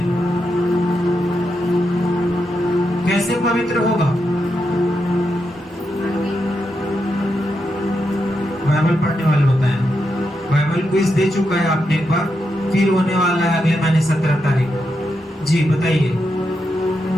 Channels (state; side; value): normal; both; correlation 0.84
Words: कैसे पवित्र होगा? बाइबल पढ़ने वाले बताएं। बाइबल क्विज दे चुका है आपने एक बार, फिर होने वाला है अगले महीने 17 तारीख को। जी बताइए,